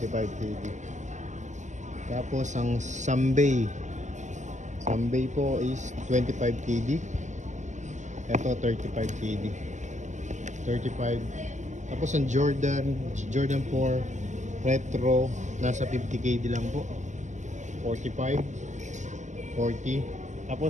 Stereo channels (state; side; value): late; left; 0.34 ms